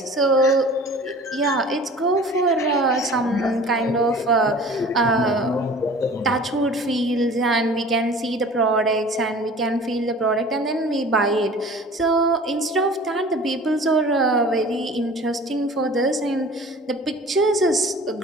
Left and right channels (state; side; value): normal; both; correlation 0.44